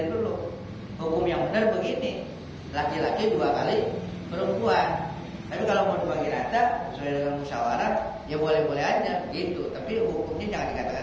dulu. Hukum yang benar begini, laki-laki 2 kali perempuan. Tapi kalau mau dibagi rata sesuai dengan musyawarah, ya boleh-boleh aja begitu. Tapi hukumnya jangan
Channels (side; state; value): both; identical; correlation 1.00